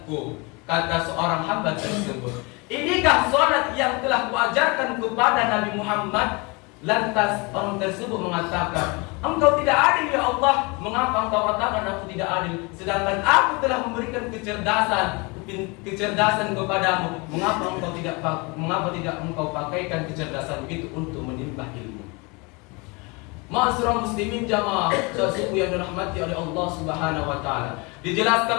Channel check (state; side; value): quieter; right; 28.1 dB